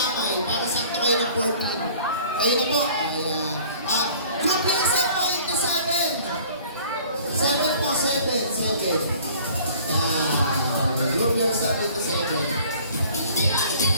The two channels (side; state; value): both; inverted; correlation -0.51